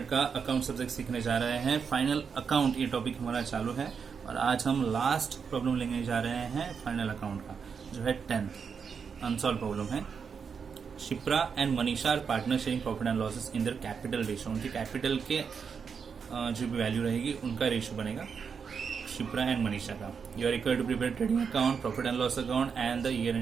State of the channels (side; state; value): left; quieter; 6.2 dB